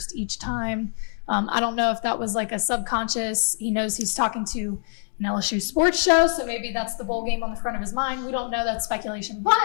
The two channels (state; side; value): silent; right; digital silence